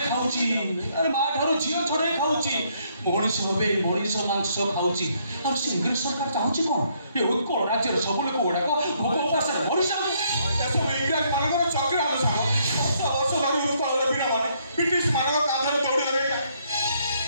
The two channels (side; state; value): both; inverted; correlation -0.70